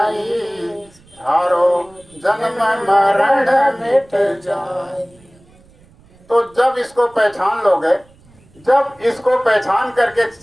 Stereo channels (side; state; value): right; noise; rumble, 29 dB below the sound